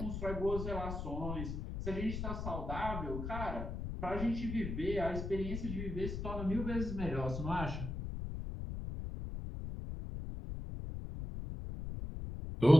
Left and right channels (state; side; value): noise; left; rumble, 5 dB below the sound